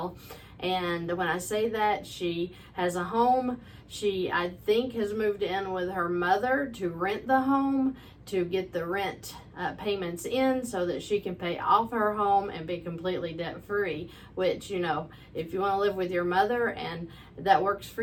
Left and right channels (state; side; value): identical; both; correlation 1.00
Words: And when I say that, she has a home. She, I think, has moved in with her mother to rent the home, to get the rent payments in so that she can pay off her home and be completely debt-free, which, you know, if you want to live with your mother and that works for